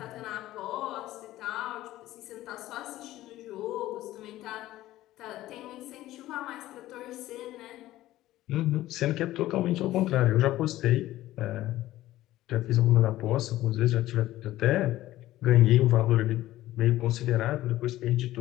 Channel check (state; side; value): quieter; right; 15.3 dB